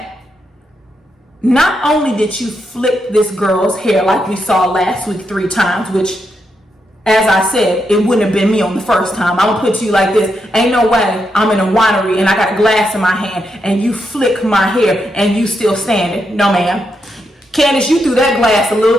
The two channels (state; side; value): normal; both; correlation 0.82